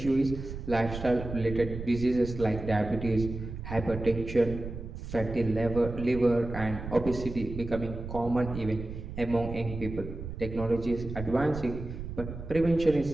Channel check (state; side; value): noise; right; rumble, 8 dB below the sound